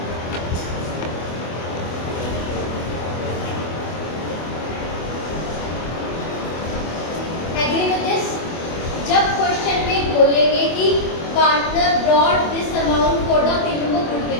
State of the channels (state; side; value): late; right; 24 ms